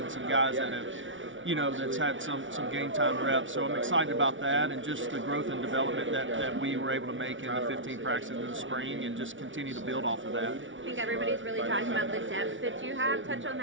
some guys that have that's had some game time reps. So I'm excited about that and just the growth and development that we were able to make in the 15 practices in the spring and just continue to build off of that. I think everybody's really talking about the depth that you have. Touch on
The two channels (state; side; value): late; left; 0.56 ms